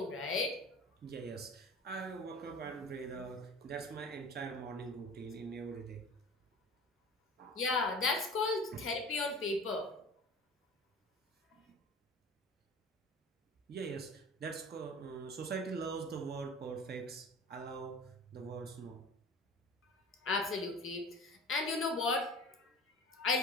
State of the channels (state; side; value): normal; both; correlation 0.39